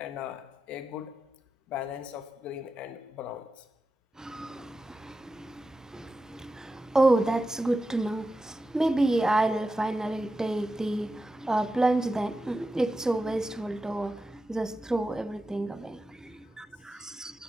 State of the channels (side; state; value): both; normal; correlation 0.92